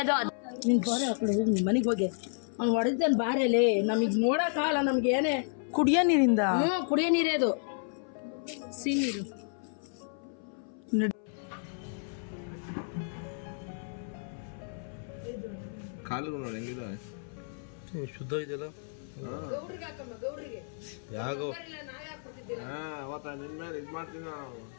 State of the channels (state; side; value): silent; right; 57 dB below the other